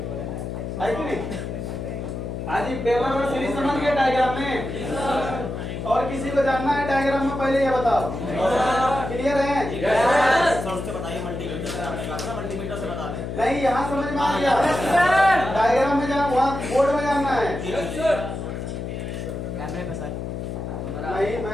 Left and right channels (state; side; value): noise; left; hum, 5 dB below the sound